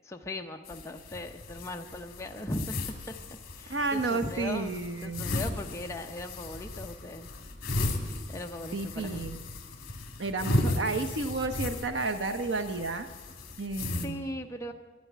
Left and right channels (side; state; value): both; normal; correlation 0.43